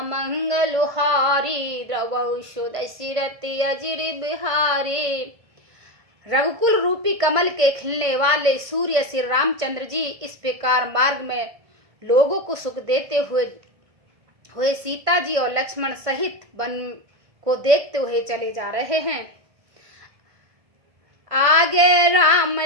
हारी, रवौ सुदशरथि अजिरि बिहारी। रघुकुल रूपी कमल के खिलने वाले सूर्य श्री रामचंद्र जी इस प्रकार मार्ग में लोगों को सुख देते हुए सीता जी और लक्ष्मण सहित वन को देखते हुए चले जा रहे हैं। आगे राम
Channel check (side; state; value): left; late; 1.5 ms